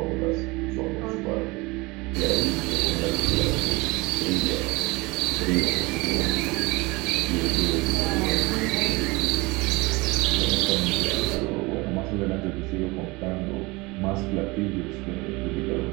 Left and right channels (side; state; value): left; quieter; 23.9 dB